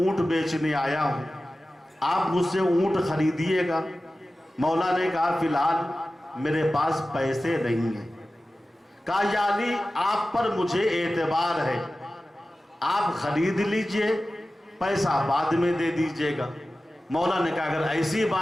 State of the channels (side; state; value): both; normal; correlation 0.95